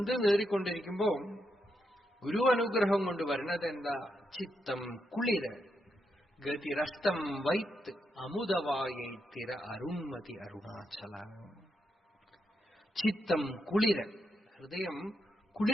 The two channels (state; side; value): normal; both; correlation 0.82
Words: നേറിക്കൊണ്ടിരിക്കുമ്പോ ഗുരു അനുഗ്രഹം കൊണ്ട് വരുന്നത് എന്താ? ചിത്തം കുളിര്, ഗതിരഷ്ടം വൈത്ത് അമുദവായൈത്തിര അരുൺമതി അരുണാചല. ചിത്തം കുളിര്, ഹൃദയം